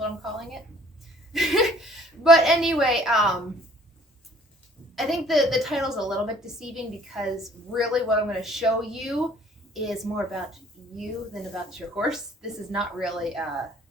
I'm calling it. But anyway, I think the title's a little bit deceiving because really what I'm going to show you is more about you than about your horse. This is not really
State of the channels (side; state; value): both; normal; correlation 0.56